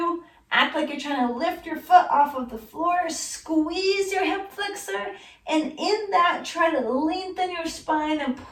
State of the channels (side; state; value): both; identical; correlation 1.00